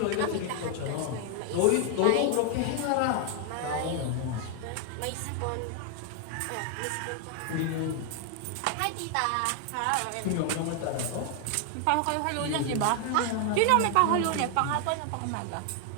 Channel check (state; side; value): different; both; correlation 0.00